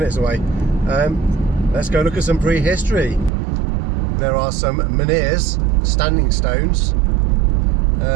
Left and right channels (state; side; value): drops out; left; at 3.3 s